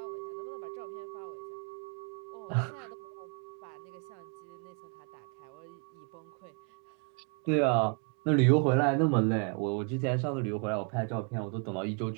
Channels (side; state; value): left; quieter; 39.5 dB